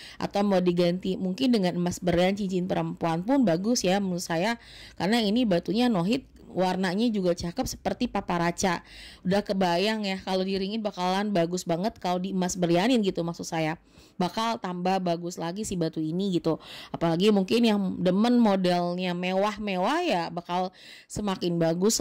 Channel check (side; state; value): both; identical; correlation 1.00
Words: Atau mau diganti mungkin dengan emas berlian cincin perempuan pun bagus ya menurut saya, karena ini batunya no hit, warnanya juga cakep seperti paparaca. Udah kebayang ya kalau diringin bakalan bagus banget, kalau di emas berlianin gitu maksud saya, bakal tambah bagus lagi si batu ini gitu. Apalagi mungkin yang demen modelnya mewah-mewah ya, bakal semakin bagus